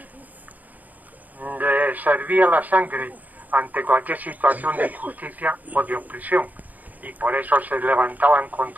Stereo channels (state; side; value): late; left; 0.080 ms